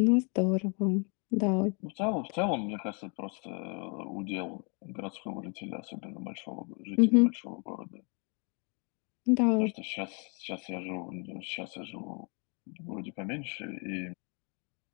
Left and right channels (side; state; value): right; quieter; 36.1 dB